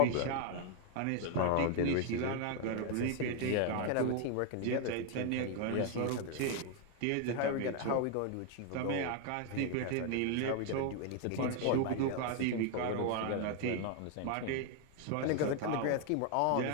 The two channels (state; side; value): different; both; correlation 0.00